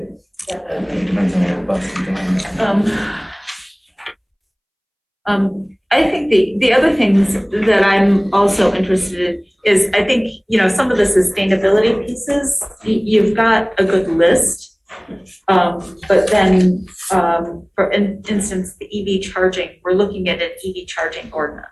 Depends on your bus and I think the other things that I'm also interested in is, I think, some of the sustainability pieces, you've got a good list. But then, for instance, the EV charging, we're looking at an EV charging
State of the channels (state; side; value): identical; both; correlation 1.00